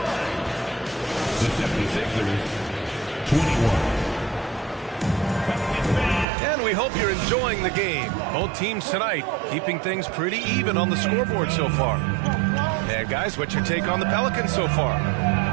76ers, 21. And we hope you're enjoying the game. Both teams tonight keeping things pretty even on the scoreboard so far. And guys, what's your take on the Pelicans so far?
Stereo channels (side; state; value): left; drops out; at 6.2 s